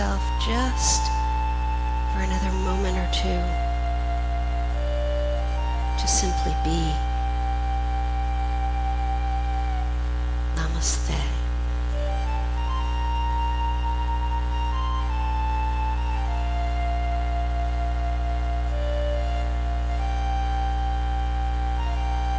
just for another moment or two to simply be. Namaste.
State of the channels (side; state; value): both; identical; correlation 1.00